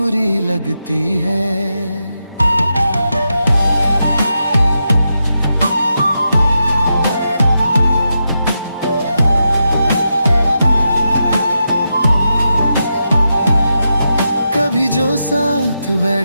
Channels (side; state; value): both; inverted; correlation -0.86